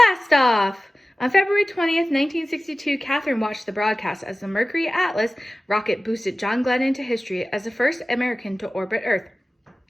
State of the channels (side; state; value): both; normal; correlation 0.96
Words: off! On February 20th, 1962, Katherine watched the broadcast as the Mercury Atlas rocket boosted John Glenn into history as the first American to orbit Earth.